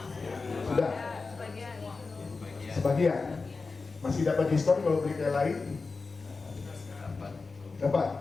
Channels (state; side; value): quieter; right; 4.2 dB